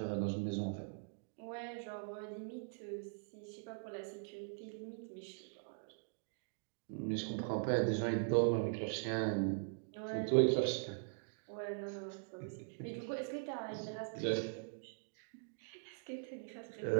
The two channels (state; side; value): silent; left; digital silence